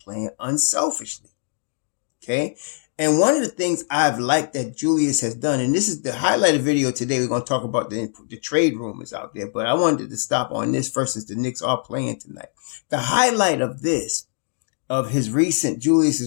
unselfishly. Okay. And one of the things I've liked that Julius has done, and this is the highlighted video today, we're going to talk about the trade rumors out there, but I wanted to stop on this first since the Knicks are playing tonight. The highlight of this, of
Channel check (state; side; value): silent; right; digital silence